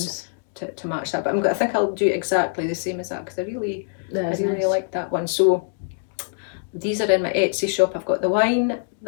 To match that, but I think I'll do exactly the same as that because I really nice. like that one. So these are in my Etsy shop. I've got the wine,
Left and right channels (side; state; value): right; silent; digital silence